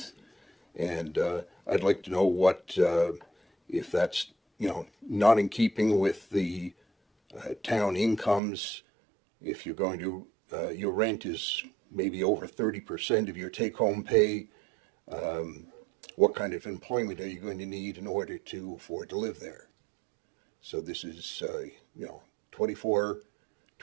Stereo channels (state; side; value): drops out; left; at 8.4 s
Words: and I'd like to know what, if that's not in keeping with the town incomes. If you're going to, your rent is maybe over 30% of your take-home pay. What kind of employment are you going to need in order to afford to live there? So this is,